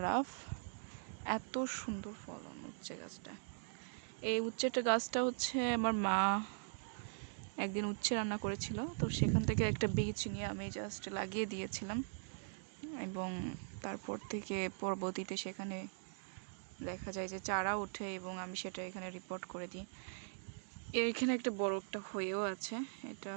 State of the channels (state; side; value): silent; left; digital silence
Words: এত সুন্দর ফলন উচ্ছে গাছটা। এই উচ্ছেটা গাছটা হচ্ছে আমার মা একদিন উচ্ছে রান্না করেছিল, তো সেখান থেকে একটা বীজ নিয়ে আমি জাস্ট লাগিয়ে দিয়েছিলাম, এবং তারপর থেকে পরবর্তীতে সেখানে দেখা যায় যে চারা ওঠে এবং আমি সেটা এখানে রিপোর্ট করে দিই। এখানে একটা বড় একটা হয়েও আছে, এটা